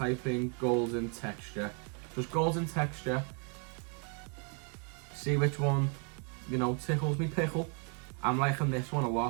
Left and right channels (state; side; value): quieter; left; 38.8 dB